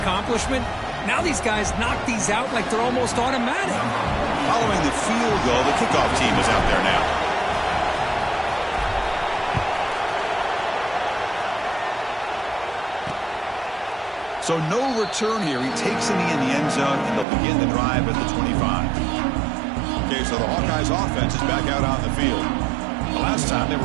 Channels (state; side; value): drops out; left; at 17.2 s